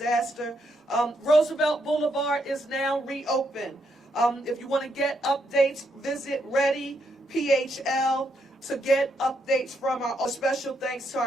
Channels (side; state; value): both; normal; correlation 0.78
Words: Roosevelt Boulevard is now reopened. If you want to get updates, visit Ready PHL to get updates from our special thanks to